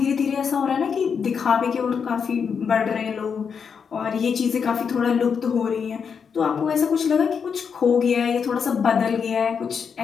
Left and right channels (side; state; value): right; quieter; 6.5 dB